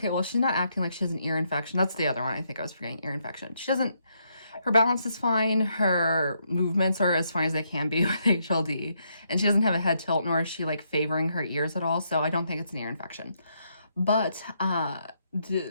well, she's not acting like she has an ear infection. That's the other one. I think I was forgetting, ear infection. Her balance is fine. Her movements are as fine as they can be with HLD. And she doesn't have a head tilt, nor is she like favoring her ears at all. So I don't think it's an ear infection. But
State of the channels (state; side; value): inverted; both; correlation -0.76